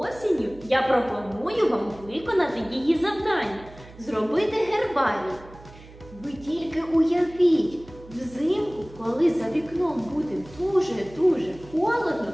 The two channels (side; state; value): right; noise; hum, 20 dB below the sound